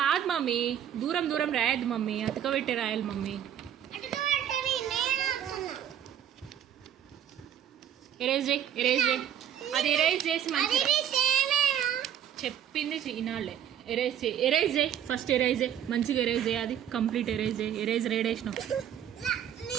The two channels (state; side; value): quieter; left; 10.0 dB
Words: మమ్మీ, దూరం దూరం రాయద్దు మమ్మీ, అతకబెట్టే రాయాలి మమ్మీ. ఎరేజ్ చేయి. అది ఎరేజ్ చేసి మంచి చెప్పింది వినాలే. ఎరేజ్ చేయి ఫస్ట్, ఎరేజ్ చేయి మంచిగా, ఎరేజ్ చేయి. అది కంప్లీట్ ఎరేజ్ చేయి. ఎరేజ్ రేడేసినావు.